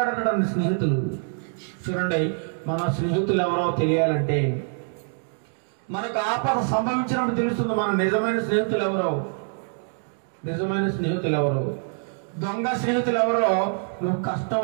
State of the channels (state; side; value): silent; left; 56 dB below the other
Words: స్నేహితులు. చూడండి, మన స్నేహితులు ఎవరో తెలియాలంటే మనకు ఆపద సంభవించినప్పుడు తెలుస్తుంది మన నిజమైన స్నేహితులు ఎవరో. నిజమైన స్నేహితులు ఎవరో, దొంగ స్నేహితులు ఎవరో నువ్వు